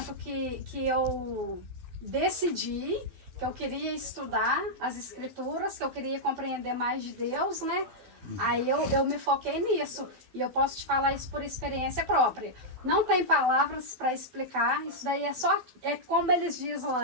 que eu decidi que eu queria estudar as escrituras, que eu queria compreender mais de Deus, né? Aí eu me foquei nisso. E eu posso te falar isso por experiência própria. Não tem palavras para explicar. Isso daí é como eles dizem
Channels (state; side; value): late; left; 12 ms